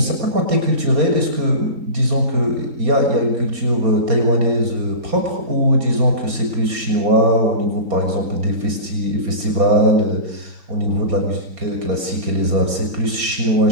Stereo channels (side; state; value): left; late; 4.3 ms